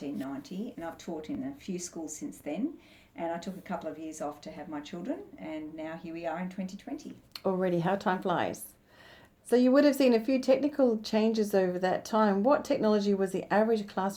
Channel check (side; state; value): both; identical; correlation 1.00